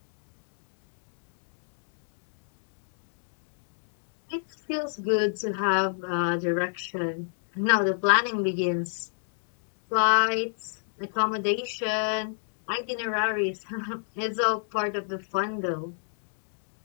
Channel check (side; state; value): right; silent; digital silence